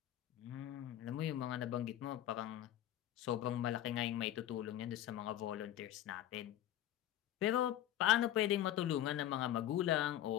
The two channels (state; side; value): quieter; right; 12.2 dB